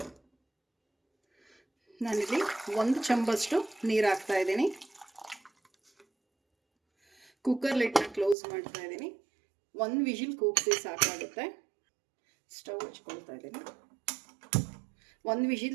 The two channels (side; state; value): left; drops out; at 8.3 s